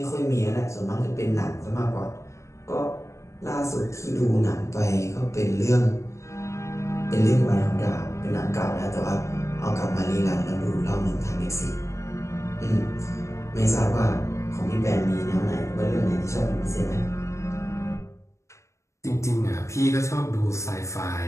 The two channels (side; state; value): right; late; 0.14 ms